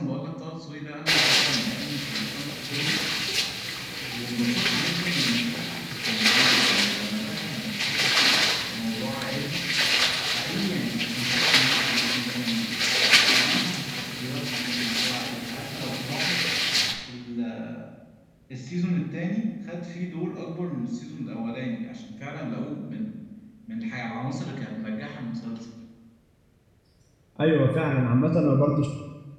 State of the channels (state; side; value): identical; both; correlation 1.00